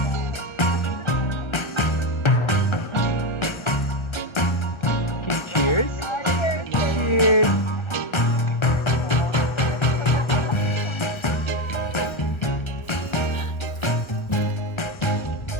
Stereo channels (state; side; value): late; right; 1.3 ms